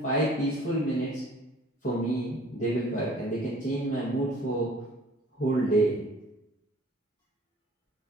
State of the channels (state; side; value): normal; both; correlation 0.51